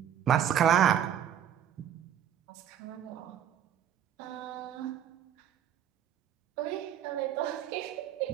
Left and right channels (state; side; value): quieter; left; 9.7 dB